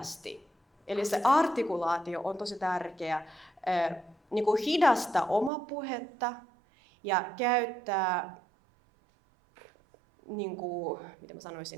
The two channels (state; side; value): drops out; left; at 5.5 s